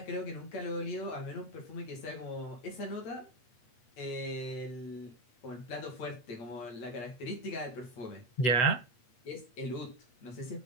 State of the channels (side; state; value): right; late; 8.4 ms